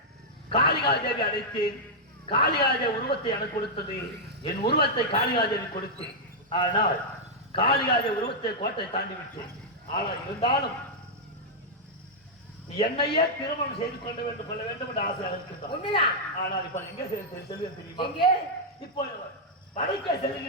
காளிகாதேவி அழைத்தேன். காளிகாதேவி உருவத்தை எனக்கு கொடுத்தது, என் உருவத்தை காளிகாதேவி கொடுத்தேன். ஆனால் காளிகாதேவி உருவத்தை கோட்டை தாண்டி விட்டேன். ஆனால் இருந்தாலும் என்னையே திருமணம் செய்து கொள்ள வேண்டும் என்று ஆசை இருக்கின்றார். ஆனால் இப்ப எங்க செல்வது தெரியுமா? இப்போ வடக்கே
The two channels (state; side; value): normal; both; correlation -0.05